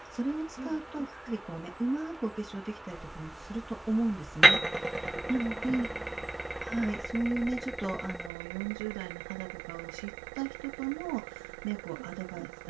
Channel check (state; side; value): drops out; left; at 8.3 s